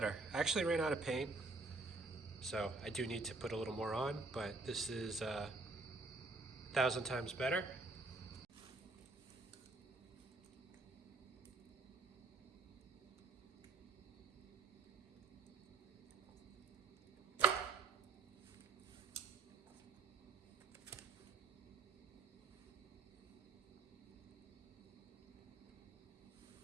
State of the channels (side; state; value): left; quieter; 3.6 dB